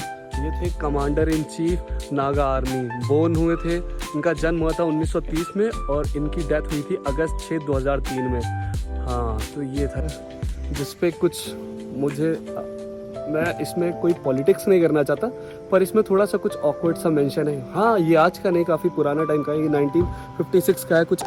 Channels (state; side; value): identical; both; correlation 1.00